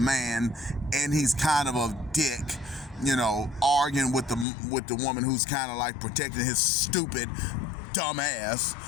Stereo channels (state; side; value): drops out; right; at 4.5 s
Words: and he's kind of a dick, you know, arguing with the woman who's kind of like protecting his stupid, dumb ass,